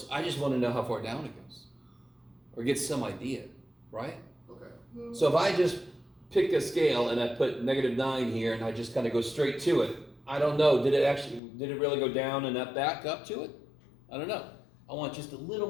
I just want to know how far down it goes, or get some idea, right? Okay. So if I just pick a scale and I put negative 9 here and I just kind of go straight to it, I don't know, did it really go down and up back up to it? I don't know. I want just a little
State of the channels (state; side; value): drops out; right; at 11.4 s